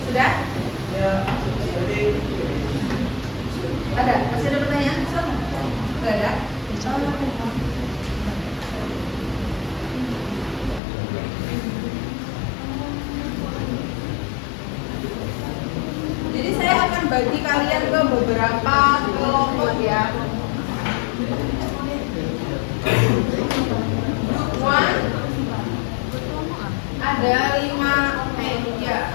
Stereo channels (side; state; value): right; drops out; at 10.8 s